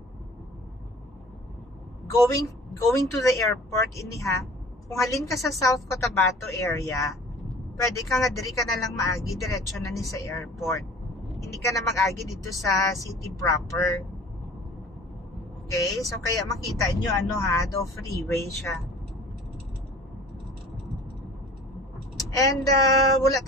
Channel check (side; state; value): both; normal; correlation 0.46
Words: going to the airport iniha. Kung halin ka sa South Cotabato area, pwede ka nga diri ka na lang maagi, diretso na ni sa airport. Hindi ka na mag-agi dito sa city proper. Okay? So, kaya makita nyo, do freeway siya. And, wala